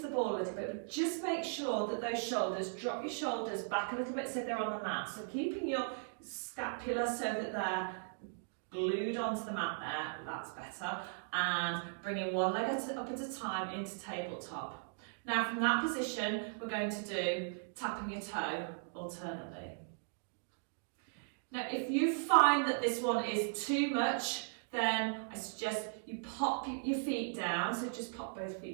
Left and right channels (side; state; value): left; silent; digital silence